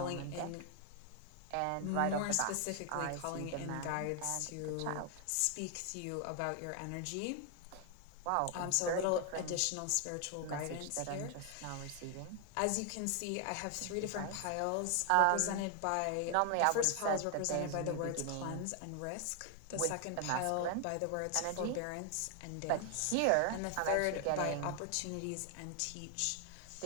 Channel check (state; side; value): different; both; correlation 0.00